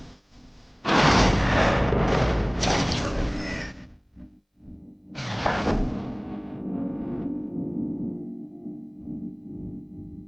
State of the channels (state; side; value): identical; both; correlation 1.00